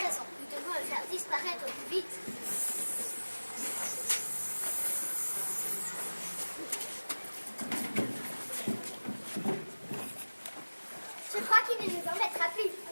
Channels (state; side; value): inverted; both; correlation -1.00